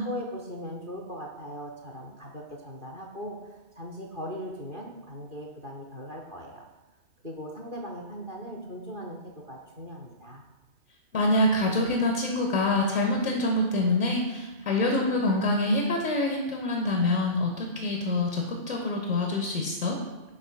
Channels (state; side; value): late; left; 2.1 ms